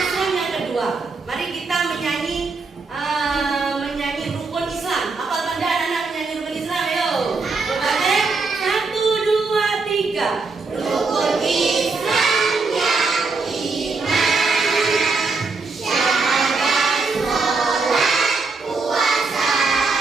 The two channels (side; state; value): left; quieter; 4.2 dB